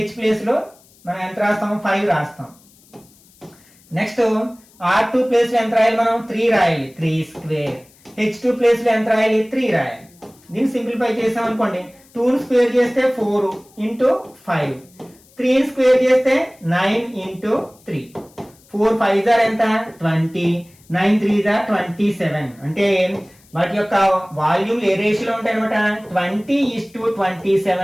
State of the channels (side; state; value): left; noise; hiss, 29 dB below the sound